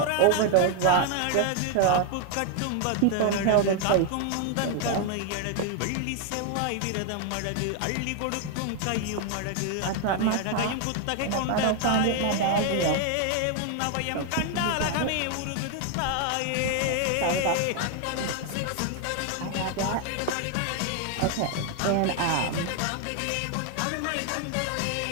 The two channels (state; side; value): different; both; correlation 0.00